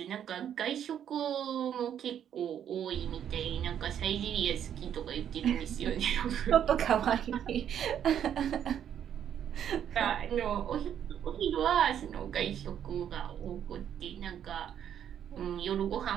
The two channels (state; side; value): quieter; left; 9.5 dB